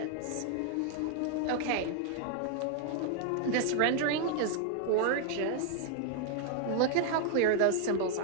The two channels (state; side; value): different; both; correlation 0.00